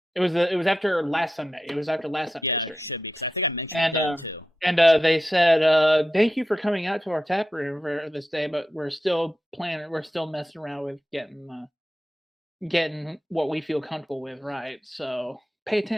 It was after last Sunday. It was after last Sunday's Yeah, stream. it should be because I think I mentioned it too. And they said, "Thank you for coming out to our tap room for this day, but we're still planning. We're still messing around with getting what we feel comfortable with, right? So pay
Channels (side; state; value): both; normal; correlation 0.90